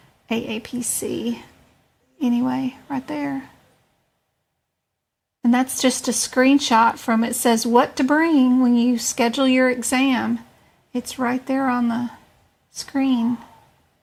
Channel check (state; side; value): identical; both; correlation 1.00